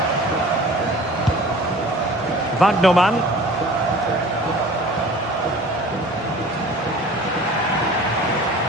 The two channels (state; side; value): normal; both; correlation 0.44